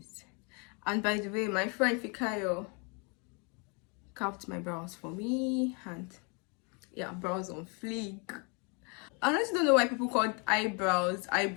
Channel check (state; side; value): quieter; right; 34.0 dB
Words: And by the way, my friend Fikayo carved my brows for me, and yeah, brows on fleek. I honestly don't know why people call eyebrow,